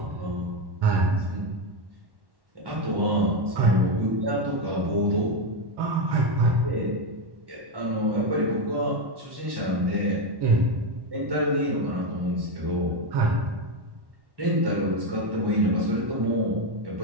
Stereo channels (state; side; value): late; left; 1.1 ms